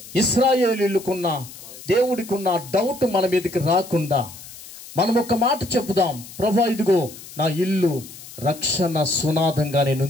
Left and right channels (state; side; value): noise; left; hiss, 16 dB below the sound